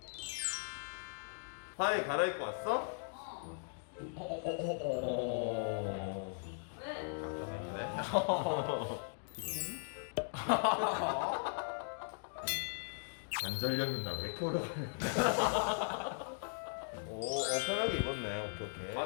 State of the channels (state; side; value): silent; right; digital silence